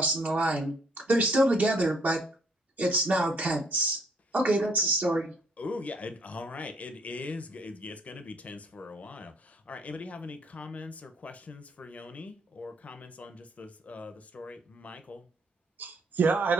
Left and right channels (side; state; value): both; normal; correlation 0.65